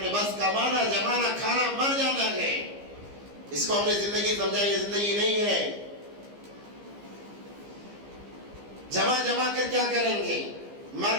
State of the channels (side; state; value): left; late; 15 ms